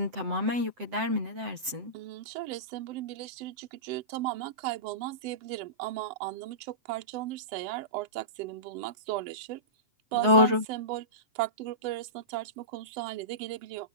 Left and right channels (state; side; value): late; left; 7.8 ms